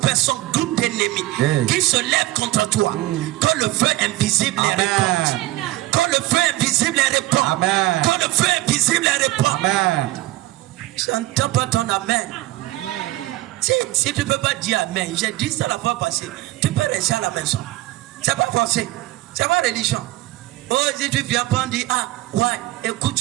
groupes d'ennemis Yeah. qui se lèvent contre toi. Que le feu invisible les Amen. répande. Que le feu invisible les répande. Amen. Que le feu invisible les répande. Amen. Je n'entends pas ton amen. Si tu ne peux pas dire amen, j'ai dit ça la fois passée, tu peux rester à la maison. C'est pas forcé. C'est pas religion. Oh, si tu viens pas dire, ah, ouais,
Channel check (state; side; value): quieter; left; 17.6 dB